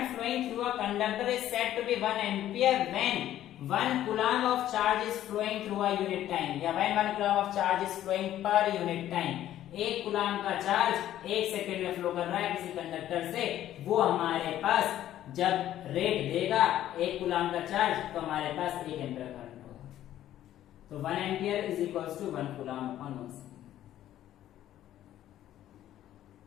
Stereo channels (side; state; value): right; quieter; 12.5 dB